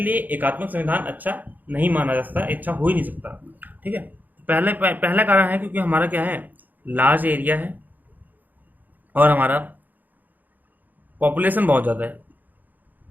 एकात्मक संविधान अच्छा नहीं माना जा सकता, अच्छा हो ही नहीं सकता। ठीक है, पहला कारण है क्योंकि हमारा क्या है, लार्ज एरिया है और हमारा पॉपुलेशन बहुत ज़्यादा है,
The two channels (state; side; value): late; left; 0.084 ms